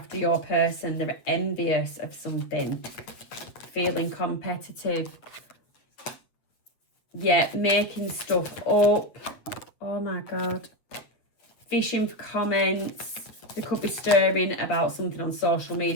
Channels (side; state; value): right; late; 8.5 ms